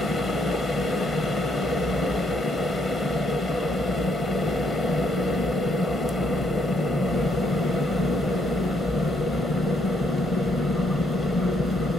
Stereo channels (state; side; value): normal; both; correlation 0.72